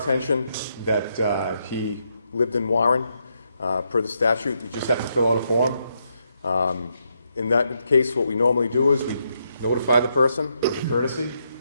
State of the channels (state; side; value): inverted; both; correlation -0.79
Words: that he lived in Warren. Per the statute, you just have to fill out a form. In that case, what we normally do is we notify the person as a courtesy.